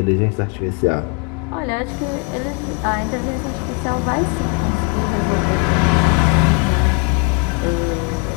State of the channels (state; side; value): quieter; right; 32.2 dB